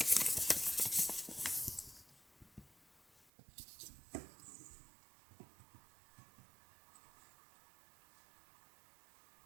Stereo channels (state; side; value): drops out; left; at 3.2 s